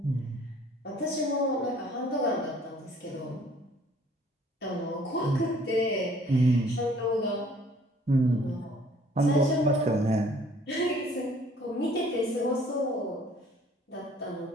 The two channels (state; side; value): normal; both; correlation 0.56